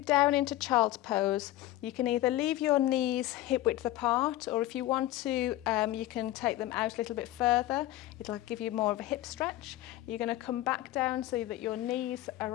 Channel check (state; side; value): quieter; right; 15.5 dB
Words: down into child's pose, you can either leave your knees hip width apart, or if you want to, you can take them out a little bit further. It'll give you more of a hip stretch. You're going to come back down so that your knees